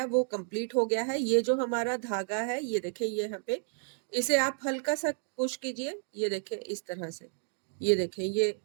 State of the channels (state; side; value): silent; left; digital silence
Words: वो कंप्लीट हो गया है। ये जो हमारा धागा है ये देखिए, ये यहाँ पे इसे आप हल्का सा पुश कीजिए, ये देखिए इस तरह से, ये देखें ये